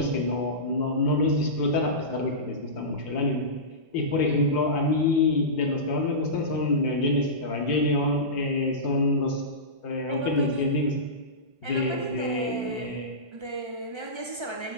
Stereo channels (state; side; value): late; left; 1.3 ms